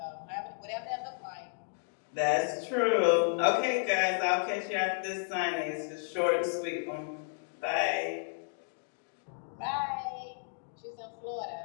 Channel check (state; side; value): silent; right; digital silence